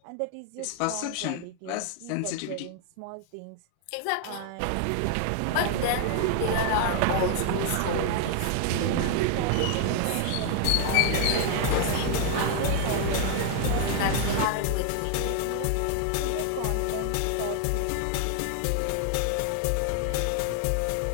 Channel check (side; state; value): both; different; correlation 0.00